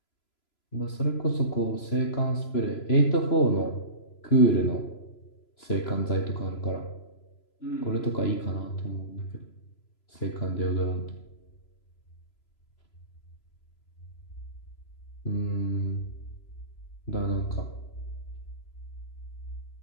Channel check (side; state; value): right; late; 3.0 ms